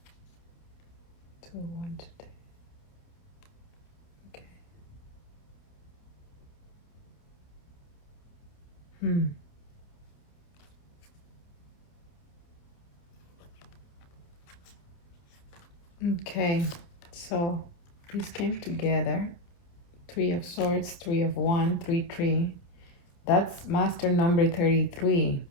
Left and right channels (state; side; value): late; right; 29 ms